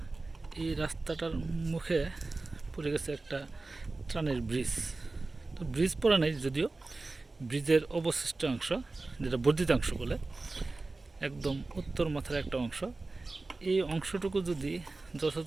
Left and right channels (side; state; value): left; quieter; 3.4 dB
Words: এই রাস্তাটার মুখে পড়ে গেছে একটা ত্রাণের ব্রিজ। তো ব্রিজ পড়া নেই যদিও, ব্রিজের অবশিষ্ট অংশ, যেটা বর্ধিতাংশ বলে, একদম উত্তর মাথার একটা অংশ। এই অংশটুকু যদি